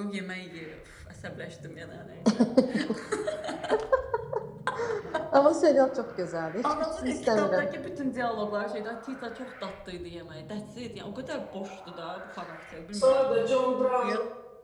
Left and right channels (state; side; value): identical; both; correlation 1.00